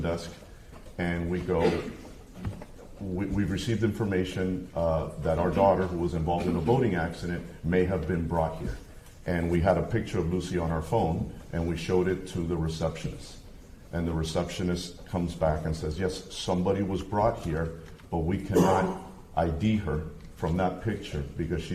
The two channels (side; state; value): both; identical; correlation 1.00